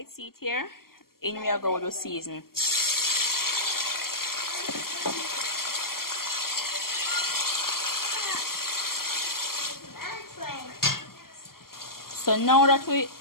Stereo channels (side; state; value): right; late; 0.92 ms